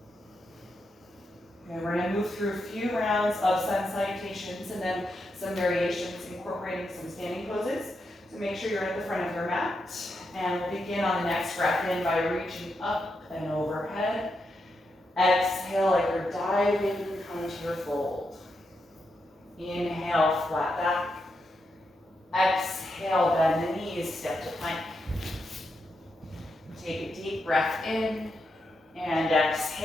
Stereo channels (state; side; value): normal; both; correlation 0.84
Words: Okay, we're gonna move through a few rounds of sun salutations and then some variations incorporating some standing poses. So make sure you're at the front of your mat. And we'll begin on the next breath in by reaching up and overhead. Exhale like you're diving, come to your fold. Inhale, flat back. Exhale, bend the knees, step to plank. Take a deep breath in and